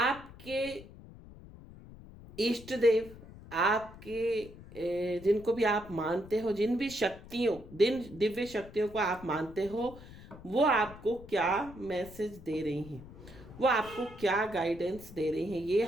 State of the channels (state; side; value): noise; left; rumble, 17 dB below the sound